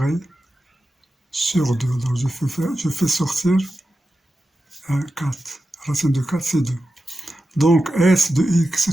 sur 2. Donc je fais sortir 4. Racine de 4 c'est 2. Donc s de x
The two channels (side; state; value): both; normal; correlation 0.91